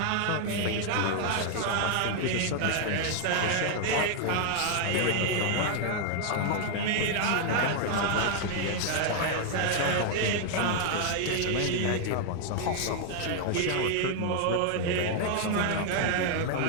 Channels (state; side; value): different; both; correlation 0.00